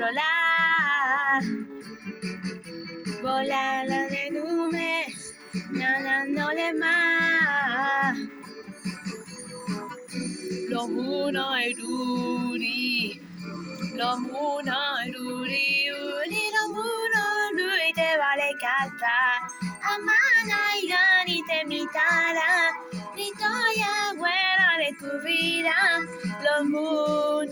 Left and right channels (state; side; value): identical; both; correlation 1.00